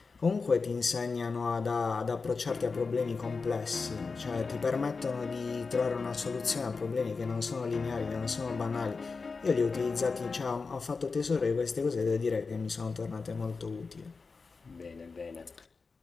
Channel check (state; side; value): quieter; right; 4.5 dB